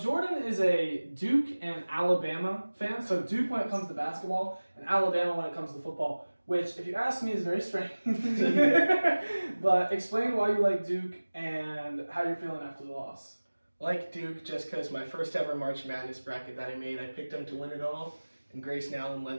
is a Duke and Alabama fan. So Duke when it comes to basketball, and Alabama when it comes to football. Which, if you ask me, is very strange. But explain why you like Duke and how you're feeling after the loss. Like Duke, just because my first ever March Madness bracket that I made, I picked them to win it all. And Grayson Allen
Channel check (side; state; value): both; inverted; correlation -1.00